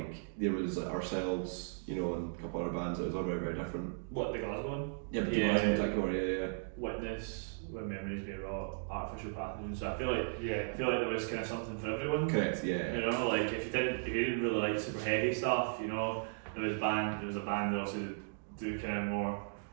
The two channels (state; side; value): silent; left; digital silence